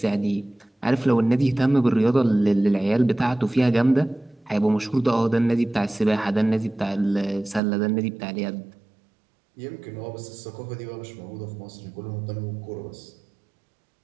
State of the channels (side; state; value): left; drops out; at 7.6 s